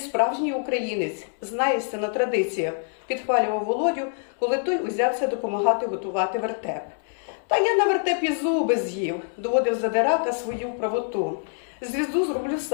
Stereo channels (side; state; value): right; silent; 62 dB below the other